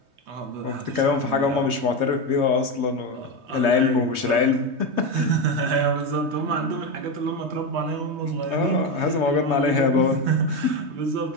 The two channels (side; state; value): left; late; 3.2 ms